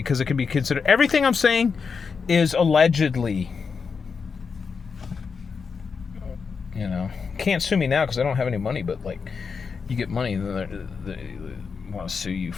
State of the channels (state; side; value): quieter; right; 5.5 dB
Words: it can be considered, everything I'm saying is allegedly, you know. Can't sue me now because I don't have any money, but like, you get money, then they want to sue you